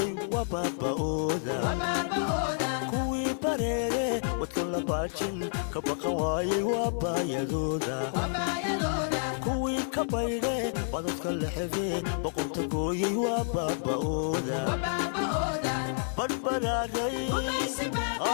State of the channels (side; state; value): right; silent; digital silence